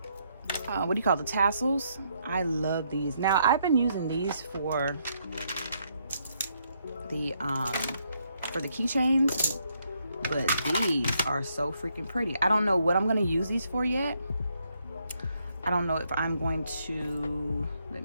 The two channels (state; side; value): inverted; both; correlation -0.74